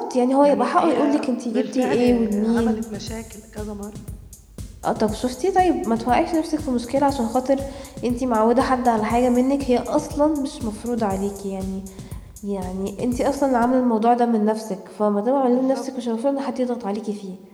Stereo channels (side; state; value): both; identical; correlation 1.00